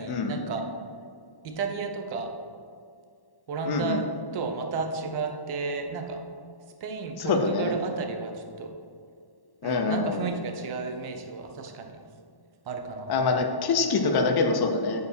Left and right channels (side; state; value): right; late; 1.1 ms